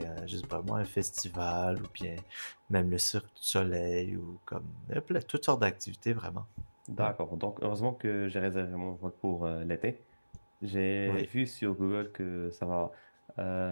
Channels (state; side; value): inverted; both; correlation -1.00